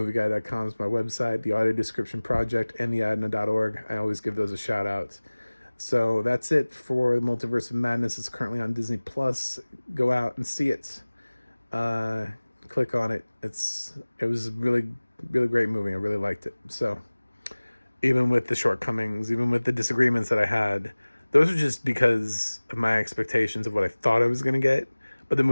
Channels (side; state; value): both; inverted; correlation -1.00